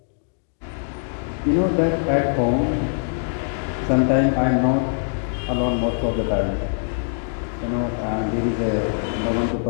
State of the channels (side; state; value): right; silent; digital silence